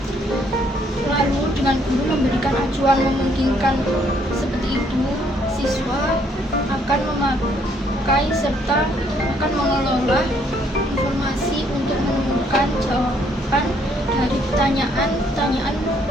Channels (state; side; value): normal; both; correlation 0.67